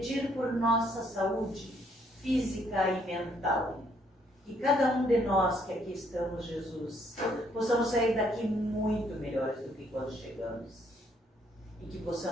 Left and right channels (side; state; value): both; normal; correlation 0.68